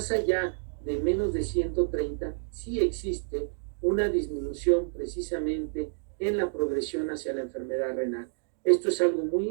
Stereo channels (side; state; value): left; silent; digital silence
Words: allá de menos de 130, sí existe una disminución precisamente en la progresión hacia la enfermedad renal. Esto es algo muy